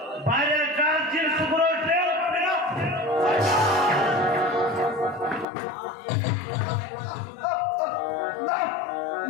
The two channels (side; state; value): right; drops out; at 5.5 s